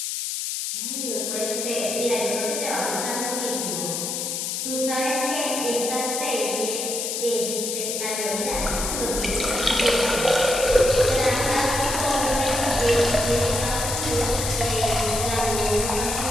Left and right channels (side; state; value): left; noise; hiss, 3 dB below the sound